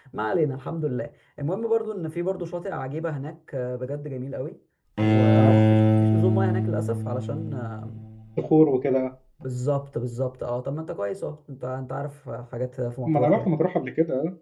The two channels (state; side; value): identical; both; correlation 1.00